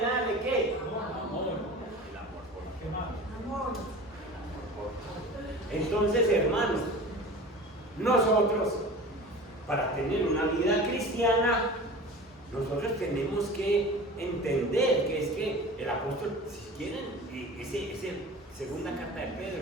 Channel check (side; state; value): both; normal; correlation 0.37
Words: ¿qué? Amor. El amor por qué más. Amor. Entonces, hermanos, nosotros, para tener una vida cristiana, nosotros tenemos que entender que es que el apóstol, si quieren, esa segunda carta de